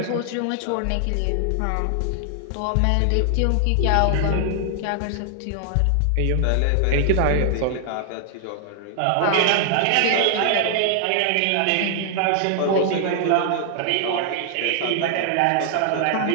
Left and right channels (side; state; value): both; different; correlation 0.00